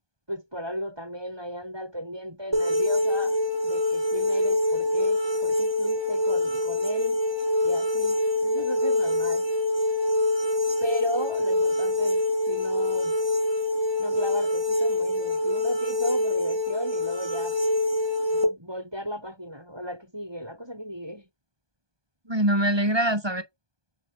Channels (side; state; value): left; late; 1.2 ms